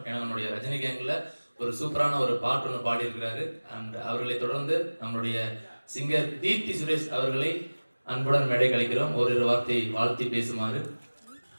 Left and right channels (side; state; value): both; inverted; correlation -1.00